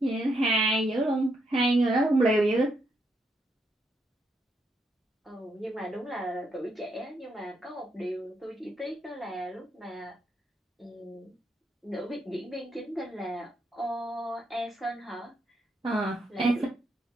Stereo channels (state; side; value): normal; both; correlation 0.78